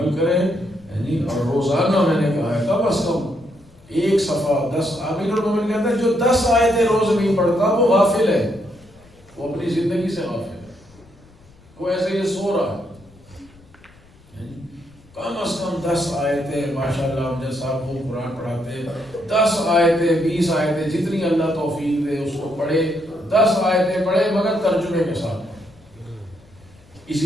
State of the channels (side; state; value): left; noise; rumble, 27 dB below the sound